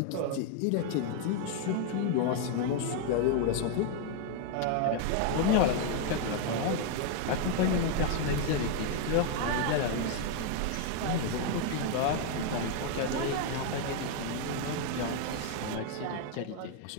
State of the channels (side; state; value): both; different; correlation 0.00